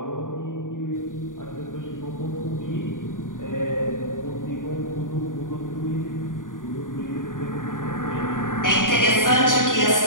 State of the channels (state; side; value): late; right; 0.88 ms